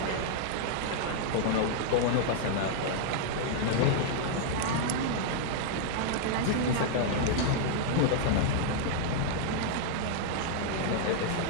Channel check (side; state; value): both; different; correlation -0.01